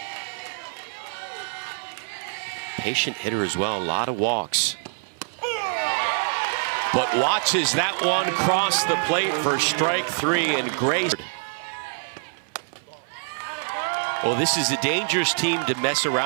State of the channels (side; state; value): left; silent; 62 dB below the other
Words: Patient hitter as well, a lot of walks. But watches that one cross the plate for strike 3, and Gray. Well, this is a dangerous team to mess